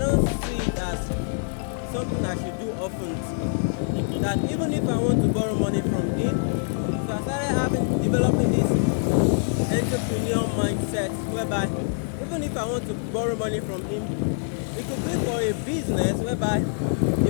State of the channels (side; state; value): right; silent; digital silence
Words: see it as something I should do often. That even if I want to borrow money from him, so I started developing this entrepreneur mindset, whereby even if I want to borrow money from him, it could be for a business whereby